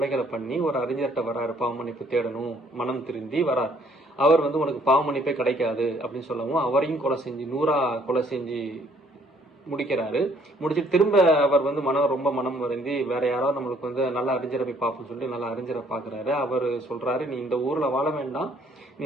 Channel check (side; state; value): both; normal; correlation 0.63